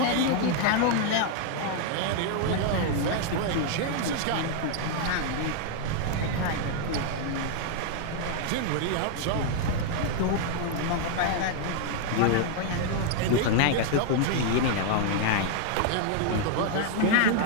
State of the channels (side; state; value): both; different; correlation 0.00